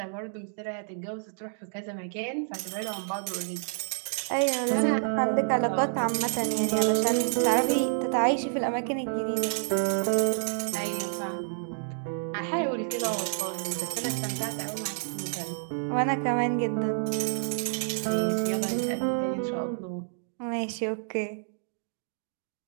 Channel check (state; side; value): silent; left; 59 dB below the other